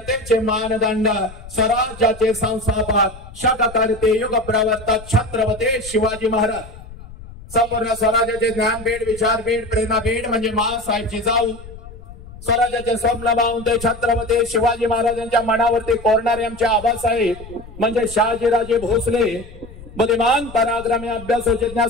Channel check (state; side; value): noise; left; rumble, 16 dB below the sound